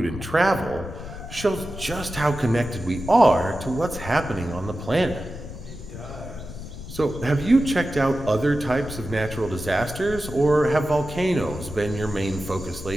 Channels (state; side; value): noise; left; rumble, 11 dB below the sound